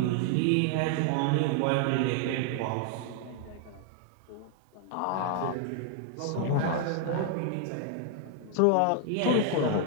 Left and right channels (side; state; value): both; different; correlation 0.00